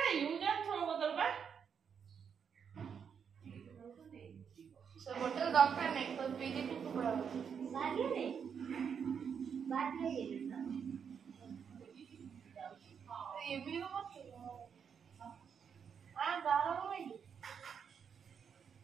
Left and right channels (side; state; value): left; quieter; 7.1 dB